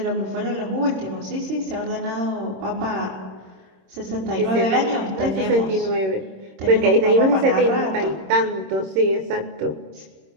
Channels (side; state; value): left; late; 26 ms